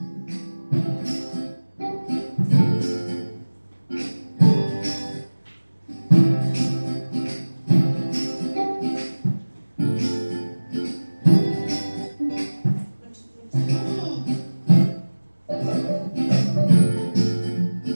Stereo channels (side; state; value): both; inverted; correlation -1.00